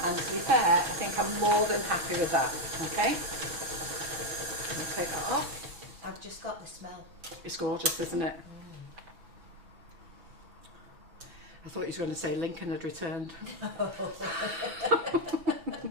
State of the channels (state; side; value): late; left; 6.0 ms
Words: And to be fair, I think I'm more than happy with that, okay? I'll take that off. I've just got the smell. It's gorgeous, isn't it? I thought you were going to say Lincoln had returned. No,